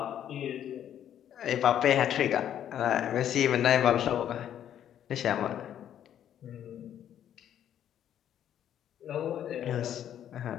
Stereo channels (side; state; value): right; quieter; 10.3 dB